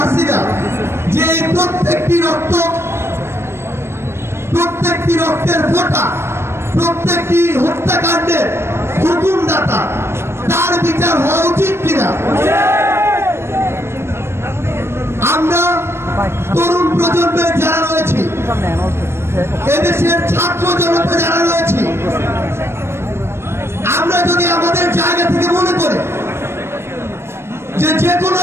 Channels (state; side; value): late; left; 0.12 ms